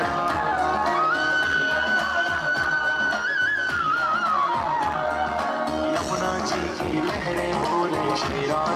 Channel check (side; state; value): both; identical; correlation 1.00